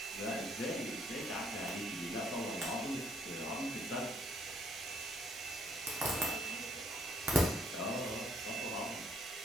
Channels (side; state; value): both; normal; correlation 0.67